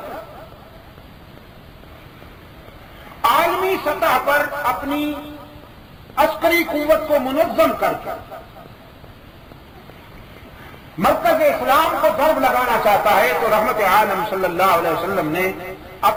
عالمی سطح پر اپنی عسکری قوت کو منظم کر کے مرکز اسلام کو ضرب لگانا چاہتا ہے تو رحمت عالم صلی اللہ علیہ وسلم نے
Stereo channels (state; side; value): identical; both; correlation 1.00